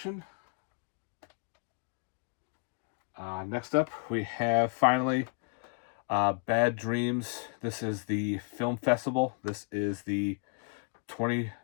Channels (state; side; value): quieter; right; 36.7 dB